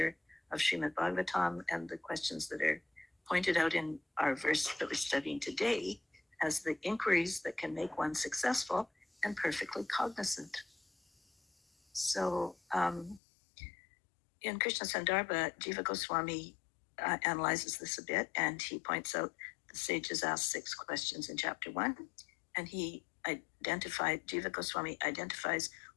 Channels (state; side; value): drops out; right; at 13.2 s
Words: of Srimad Bhagavatam, and the questions that are pointed out in our verse that we're studying today as the inquiries that can make one successful and perfectly cognizant. So in Krishna Sandarbha, Jiva Goswami analyzes this a bit, and he points out the sages asked 6 questions in chapter 1, and Jiva Goswami identifies